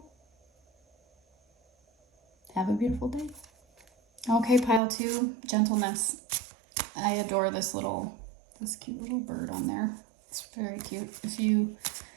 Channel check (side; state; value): left; drops out; at 4.8 s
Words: Have a beautiful day. Okay, pile 2, gentleness. I adore this cute little bird on there. It's very cute. If you